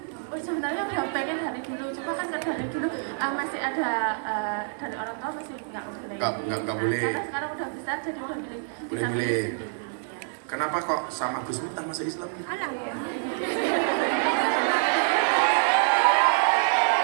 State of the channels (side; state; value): left; silent; 60 dB below the other